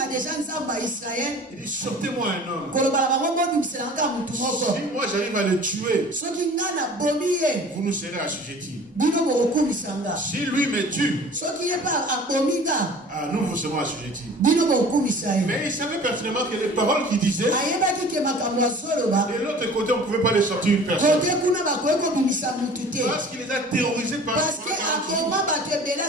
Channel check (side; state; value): both; normal; correlation 0.45